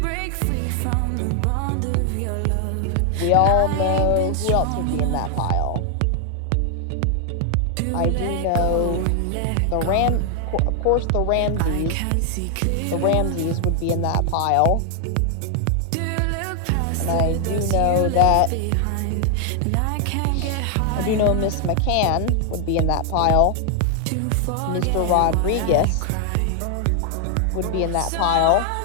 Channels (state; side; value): different; both; correlation 0.00